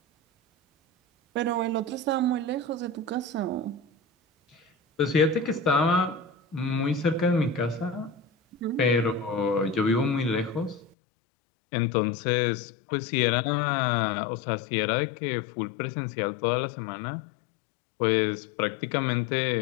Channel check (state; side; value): drops out; right; at 11.0 s